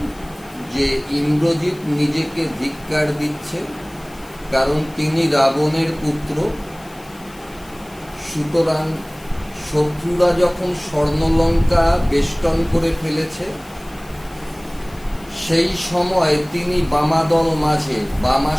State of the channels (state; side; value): noise; left; hiss, 24 dB below the sound